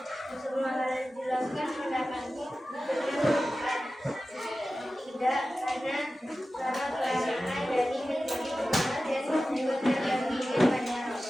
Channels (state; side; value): normal; both; correlation 0.95